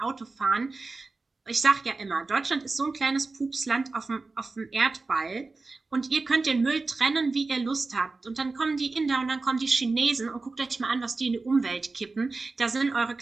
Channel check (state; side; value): quieter; left; 3.7 dB